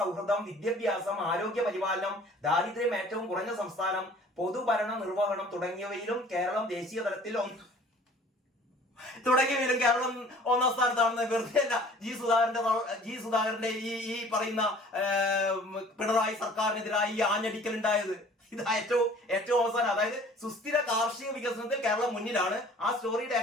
വിദ്യാഭ്യാസം, ആരോഗ്യ പരിപാലനം, ദാരിദ്ര്യം ഏറ്റവും കുറഞ്ഞ സംസ്ഥാനം, പൊതുഭരണ നിർവഹണം തുടങ്ങിയവയിലും കേരളം ദേശീയ തലത്തിൽ കേരളം 1-ാം സ്ഥാനത്താണെന്ന് വെറുതെ അല്ല. ജി സുധാകരന്റെ ഈ പറയുന്ന പിണറായി സർക്കാരിനെതിരായി ഈ ആഞ്ഞടിക്കൽ ഉണ്ടായത്. ഇത് ഏറ്റവും അവസാനം, അതായത് സുസ്ഥിര കാർഷിക വികസനത്തിൽ കേരളം മുന്നിലാണ്. ആ സ്റ്റോറിയുടെ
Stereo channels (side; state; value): both; normal; correlation 0.50